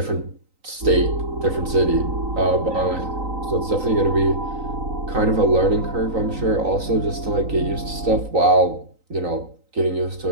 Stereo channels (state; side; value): late; left; 3.9 ms